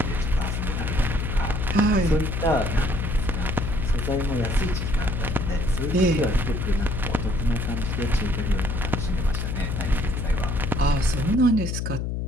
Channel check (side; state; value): left; noise; hum, 2 dB below the sound